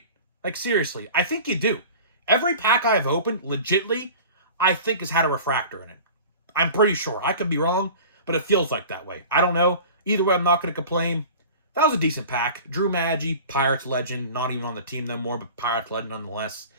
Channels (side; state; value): both; inverted; correlation -0.39